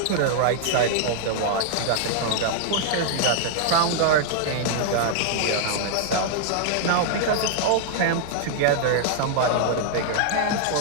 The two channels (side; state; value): both; different; correlation -0.01